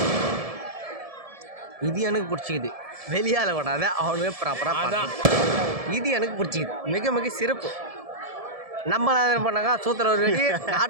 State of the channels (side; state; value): left; late; 1.7 ms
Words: இது எனக்கு பிடிச்சிக்குது. வெளியால் விடாத அவனுமே ப்ராப்பராக அதான் இது எனக்கு பிடிச்சிக்குது. மிக மிக சிறப்பு. நம்ம என்ன பண்ணாங்க, சூத்திர ஒரு வெடி,